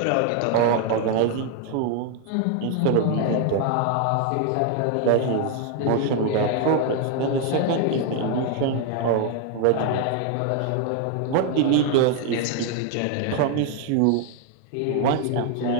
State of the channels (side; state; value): both; different; correlation 0.00